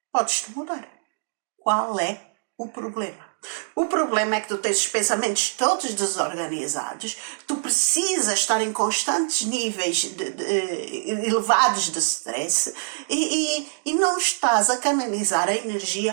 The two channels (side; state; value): left; silent; digital silence